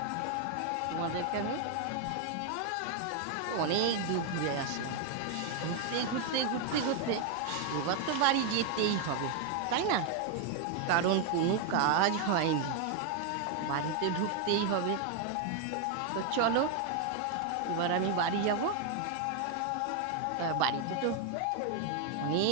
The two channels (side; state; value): both; different; correlation 0.01